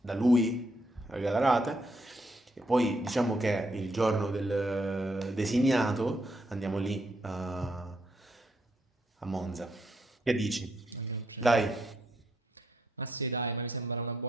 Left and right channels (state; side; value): normal; both; correlation 0.76